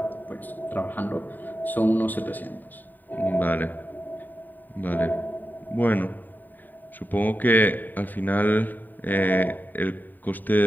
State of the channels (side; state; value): right; late; 0.089 ms